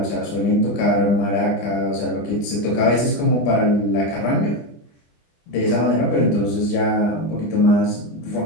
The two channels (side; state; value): right; late; 25 ms